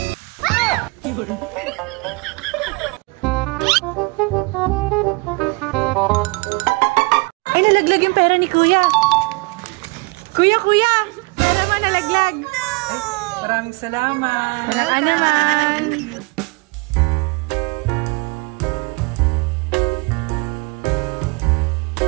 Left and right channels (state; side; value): quieter; left; 27.9 dB